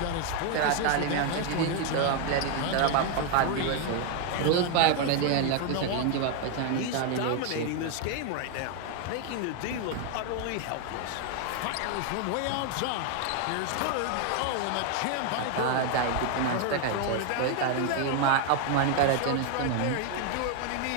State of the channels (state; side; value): different; both; correlation 0.01